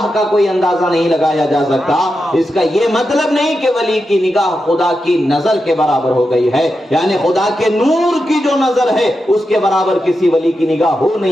کا کوئی اندازہ نہیں لگایا جا سکتا۔ اس کا یہ مطلب نہیں کہ ولی کی نگاہ خدا کی نظر کے برابر ہو گئی ہے، یعنی خدا کے نور کی جو نظر ہے اس کے برابر کسی ولی کی نگاہ ہو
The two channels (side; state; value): both; normal; correlation 0.88